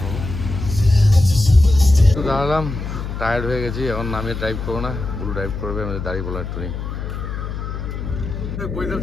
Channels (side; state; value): left; noise; hum, 6 dB below the sound